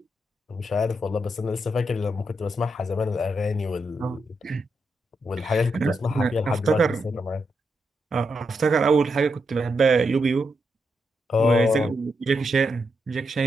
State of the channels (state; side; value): normal; both; correlation 0.83